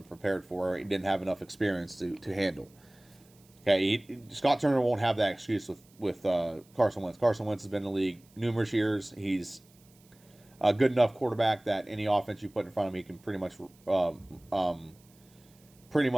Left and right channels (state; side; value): noise; right; hiss, 29 dB below the sound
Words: prepared for. He didn't have enough experience to handle. Okay, Scott Turner won't have that excuse with Carson Wentz. Carson Wentz has been in the league numerous years. He's a good enough quarterback that any offense you put in front of him, he can pretty much